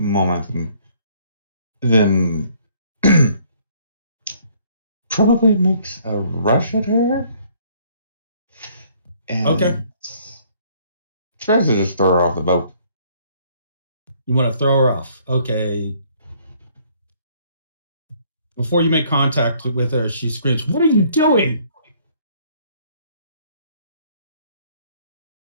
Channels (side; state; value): both; inverted; correlation -0.62